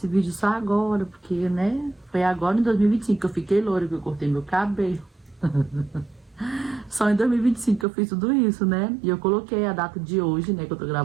vídeo só agora? Porque, né, foi agora em 2025 que eu fiquei loura, que eu cortei meu cabelo. Só em 2025 que eu fiz tudo isso, né? E eu coloquei a data de hoje, né? Que eu tô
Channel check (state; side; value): drops out; left; at 7.9 s